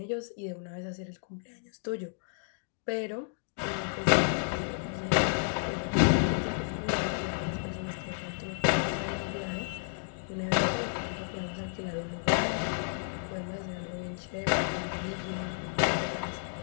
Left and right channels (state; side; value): silent; right; digital silence